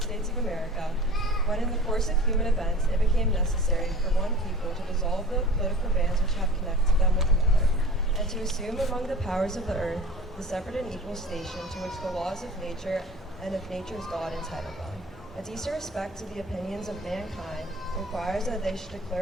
States of America, when in the course of human events it became necessary for one people to dissolve the political bands which have connected them with another, and to assume among the powers of the earth the separate and equal station to which the laws of nature and of nature's God entitle them. A decent respect to the opinions of mankind requires that they should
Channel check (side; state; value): both; normal; correlation 0.41